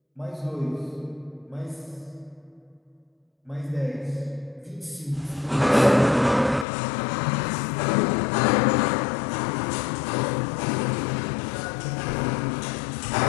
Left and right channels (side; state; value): right; drops out; at 6.7 s